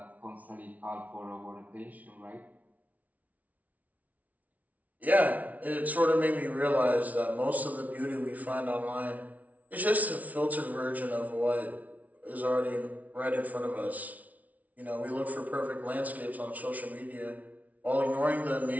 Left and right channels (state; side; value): late; left; 0.072 ms